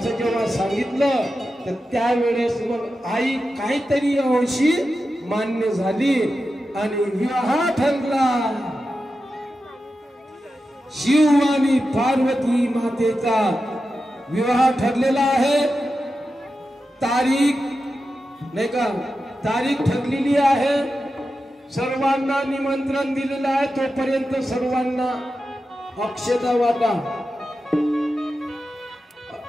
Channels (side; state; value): both; normal; correlation 0.91